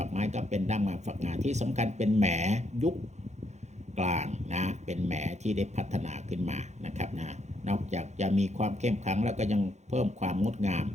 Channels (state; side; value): late; left; 0.33 ms